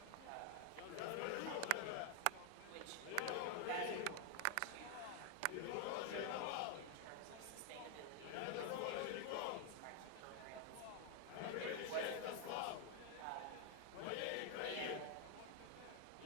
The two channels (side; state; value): both; different; correlation 0.00